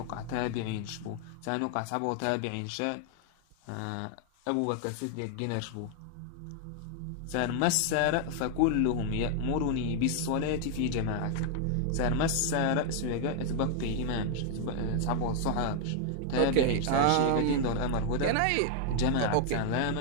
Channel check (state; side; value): different; both; correlation 0.00